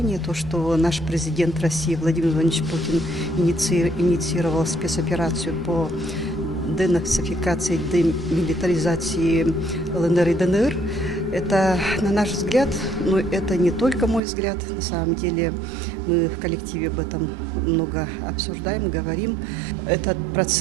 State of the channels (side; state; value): left; drops out; at 14.2 s